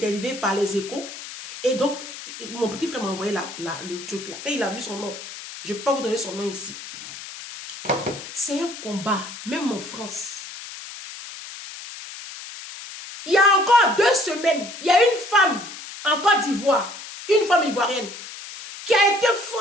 par Les Échos. Et donc, mon petit frère m'a envoyé le truc là. Et il a vu son nom. Je ne peux pas vous donner son nom ici. C'est un combat, même en France. Il y a encore 2 semaines, il y a une femme en Côte d'Ivoire, une femme ivoirienne, qui a été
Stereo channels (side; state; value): left; noise; hiss, 12 dB below the sound